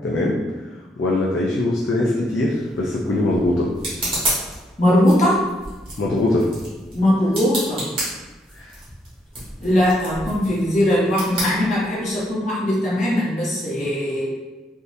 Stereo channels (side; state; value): both; normal; correlation 0.74